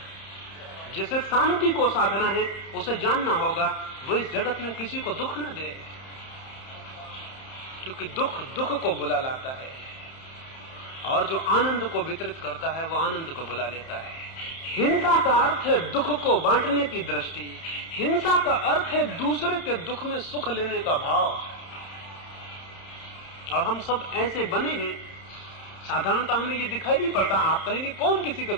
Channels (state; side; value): late; right; 31 ms